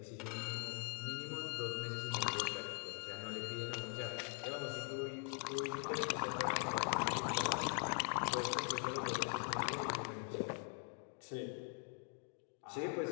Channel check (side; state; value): right; quieter; 37.0 dB